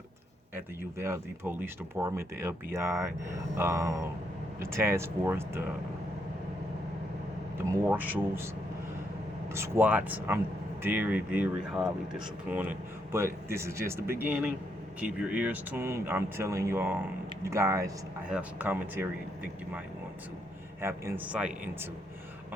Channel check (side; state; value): both; normal; correlation 0.77